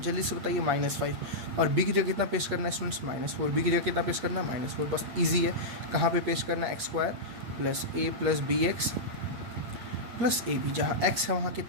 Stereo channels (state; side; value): late; left; 8.4 ms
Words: से बताइए -5, और बी की जगह कितना पेस्ट करना है स्टूडेंट्स -4, बी की जगह कितना पेस्ट करना है -4, बस ईजी है। कहाँ पे पेस्ट करना है x² plus a plus B X plus A B, जहाँ x है वहाँ